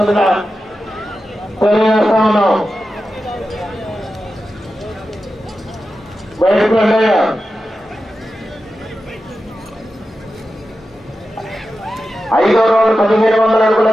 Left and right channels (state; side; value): normal; both; correlation 0.91